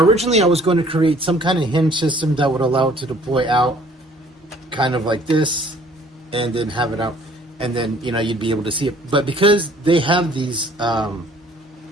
originally I was going to create some kind of hinge system that would allow it to deploy out kind of like this, and then have it out, and then, you know, you'd be able to see it. But because they have these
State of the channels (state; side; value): normal; both; correlation 0.56